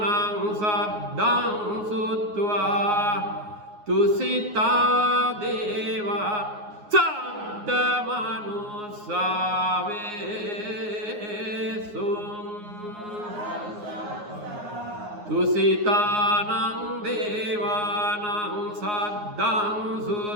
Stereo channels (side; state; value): left; late; 9.6 ms